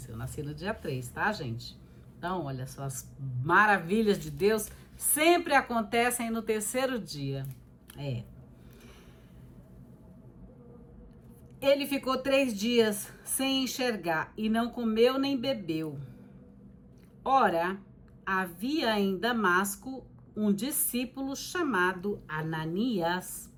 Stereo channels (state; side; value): identical; both; correlation 1.00